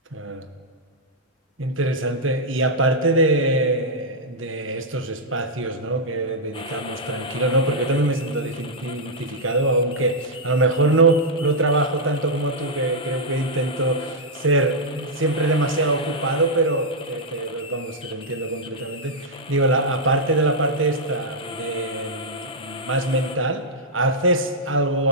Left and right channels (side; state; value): both; normal; correlation -0.05